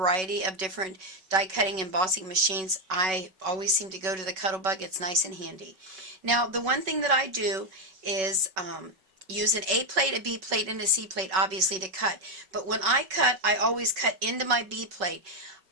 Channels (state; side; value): late; left; 5.3 ms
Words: of different die cutting and embossing machines. I always seem to go to the Cuttlebug. It's nice and handy. Now the one thing that I do is use an A plate, a B plate, and a C plate obviously to cut. But when I cut, I always cut into my B plate.